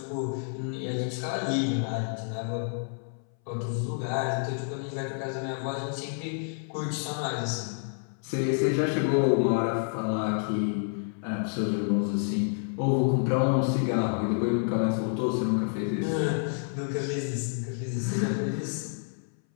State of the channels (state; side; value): silent; right; 59 dB below the other